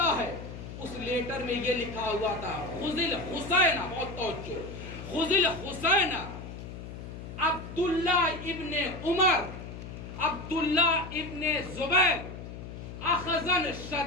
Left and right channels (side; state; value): left; noise; hum, 11 dB below the sound